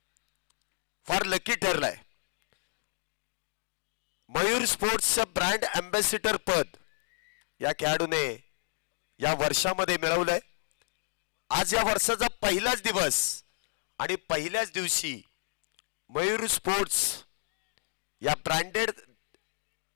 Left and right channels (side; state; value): right; silent; digital silence